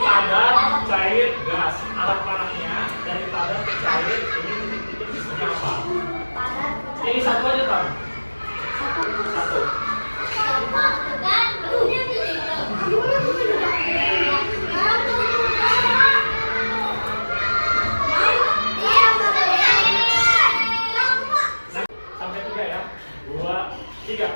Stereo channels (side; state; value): both; inverted; correlation -1.00